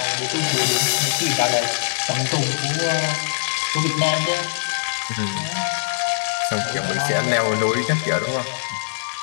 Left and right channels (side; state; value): right; silent; digital silence